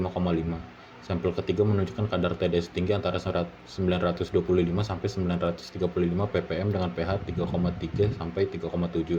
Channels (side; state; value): both; identical; correlation 1.00